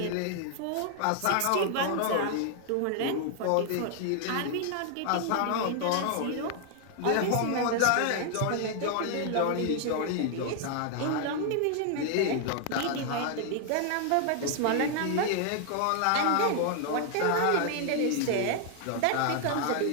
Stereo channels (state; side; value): different; both; correlation 0.00